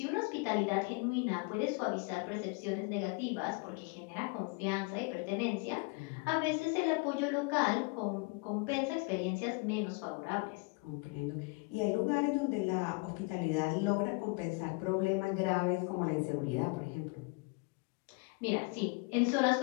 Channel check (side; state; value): right; quieter; 29.1 dB